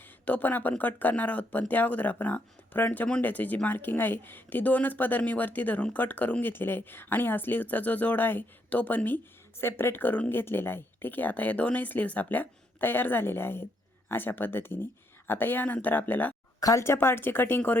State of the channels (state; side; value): normal; both; correlation 0.75